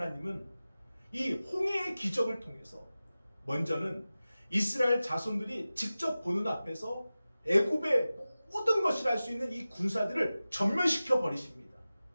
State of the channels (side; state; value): both; inverted; correlation -0.96